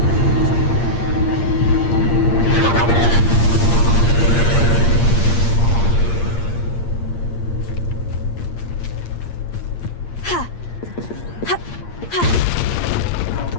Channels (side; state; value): right; late; 8.6 ms